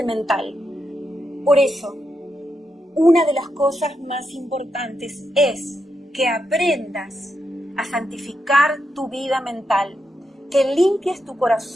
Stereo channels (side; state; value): both; normal; correlation 0.84